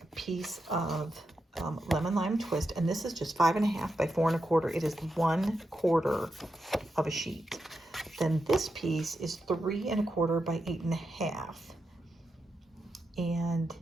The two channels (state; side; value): normal; both; correlation 0.87